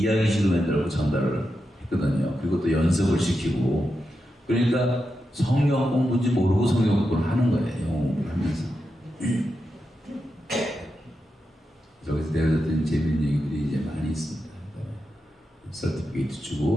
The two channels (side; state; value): both; normal; correlation 0.88